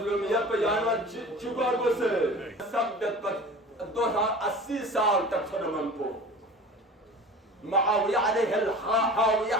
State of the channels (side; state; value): both; normal; correlation 0.39